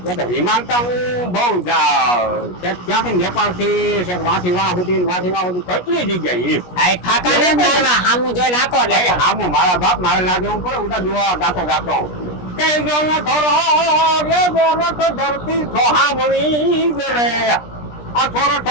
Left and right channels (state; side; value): late; right; 17 ms